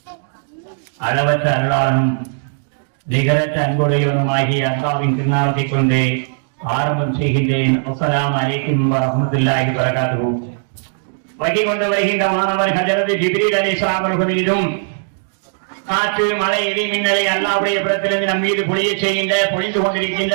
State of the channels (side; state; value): left; silent; digital silence